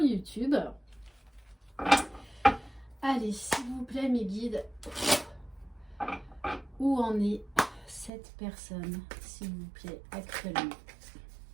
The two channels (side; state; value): left; drops out; at 8.1 s